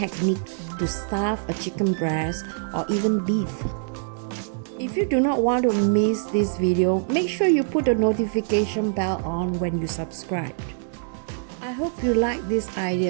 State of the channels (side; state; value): left; silent; digital silence